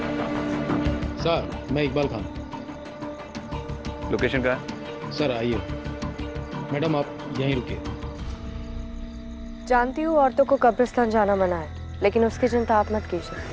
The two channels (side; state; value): both; identical; correlation 1.00